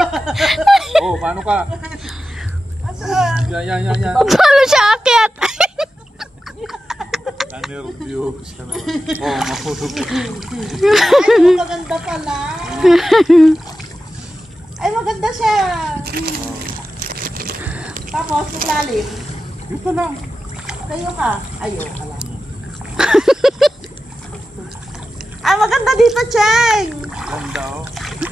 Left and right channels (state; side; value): normal; both; correlation 0.92